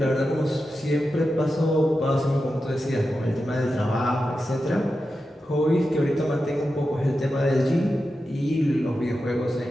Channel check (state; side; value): normal; both; correlation 0.91